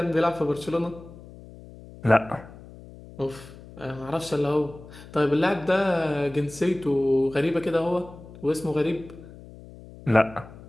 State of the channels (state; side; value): noise; left; hum, 18 dB below the sound